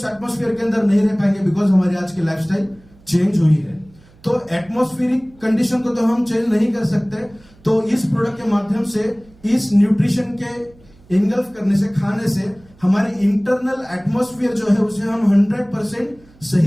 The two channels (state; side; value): noise; right; hum, 27 dB below the sound